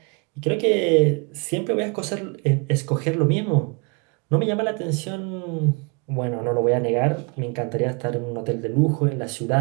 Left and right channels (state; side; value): quieter; left; 32.0 dB